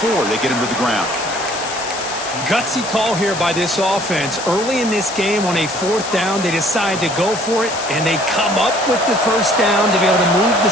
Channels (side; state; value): left; noise; hiss, 9 dB below the sound